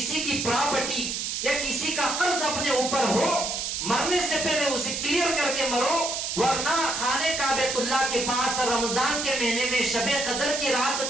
کی پراپرٹی یا کسی کا قرض اپنے اوپر ہو، مرنے سے پہلے اسے کلیئر کر کے مرو، ورنہ خانہ کعبۃ اللہ کے پاس رمضان کے مہینے میں شب قدر کی رات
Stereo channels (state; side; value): noise; right; hiss, 2 dB below the sound